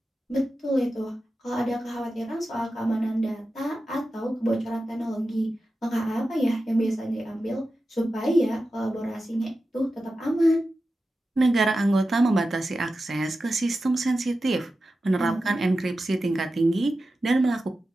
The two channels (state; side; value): normal; both; correlation 0.92